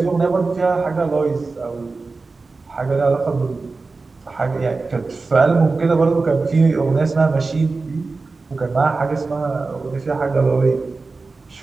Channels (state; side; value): quieter; left; 3.9 dB